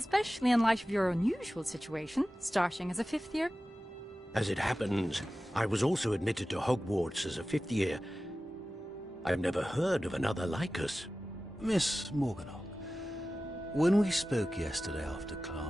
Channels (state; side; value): normal; both; correlation 0.95